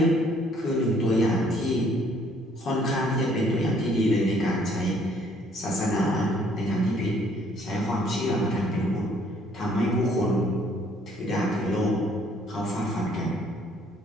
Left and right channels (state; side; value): normal; both; correlation 0.62